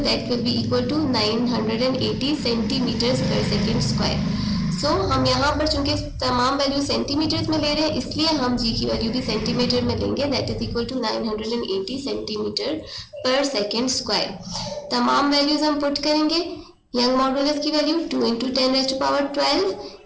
will be equal to 980 centimetres per second square. So हम यहाँ पर चूंकि तमाम वैल्यू सेंटीमीटर्स में ले रहे हैं इसलिए हम जी की वैल्यू भी सेंटीमीटर में लेंगे, that is equal to 980 centimetre per second square. तमाम वैल्यूज हम पुट करेंगे। यंग मॉडुलस की वैल्यू 2 × 10⁻12,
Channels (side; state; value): both; identical; correlation 1.00